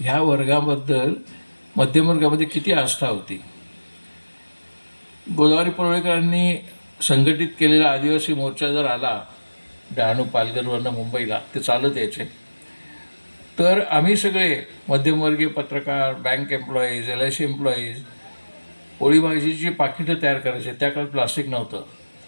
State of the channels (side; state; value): both; inverted; correlation -1.00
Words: वर्गाबद्दल मध्यमवर्गामध्ये किती आस्था होती. गोदावरी परुळेकरांनी संघटित केलेला आदिवासी मोर्चा जर आला डहाणू पालघरवरनं मुंबईला, ते चालत यायचे, तर आम्ही सगळे मध्यमवर्गीय पत्रकार, बँक एम्प्लॉईज, LIC एम्प्लॉईज पोळी भाजीची पाकिटं तयार करायचे. त्या काळात प्लास्टिक नव्हतं,